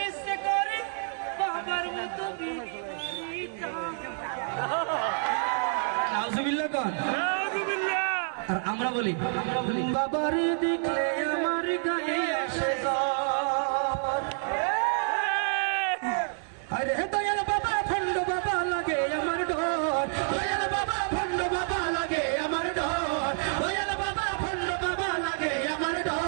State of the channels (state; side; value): silent; left; 59 dB below the other